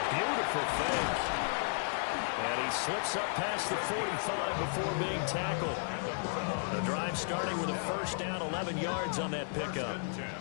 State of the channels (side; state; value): right; silent; 55 dB below the other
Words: beautiful fake. And he slips up past the 45 before being tackled. The drive starting with a first down, 11 yards on that pickup. 10